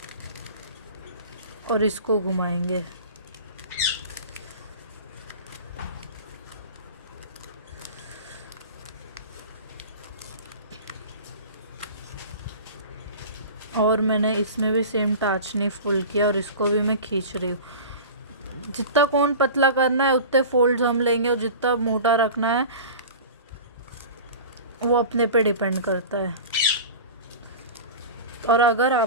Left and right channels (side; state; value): both; inverted; correlation -0.35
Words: और इसको घुमाएंगे। और मैंने इसमें भी सेम टाचनी फुल किया और इसको भी मैं खींच रही हूँ। जितना कोन पतला करना है उतने फोल्ड्स हम लेंगे और जितना मोटा रखना है वो अपने पे डिपेंड करता है। और अगर